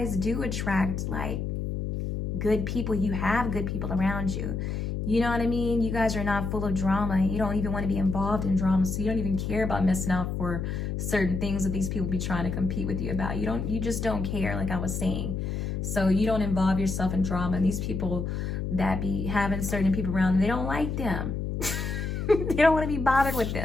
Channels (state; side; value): noise; left; hum, 3 dB below the sound